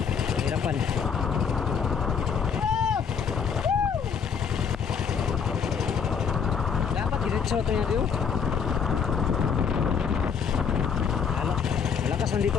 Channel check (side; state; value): right; quieter; 6.8 dB